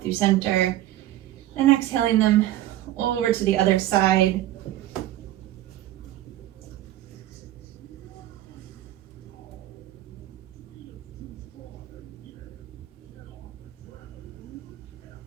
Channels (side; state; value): left; quieter; 14.2 dB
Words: through center and exhaling them over to the other side.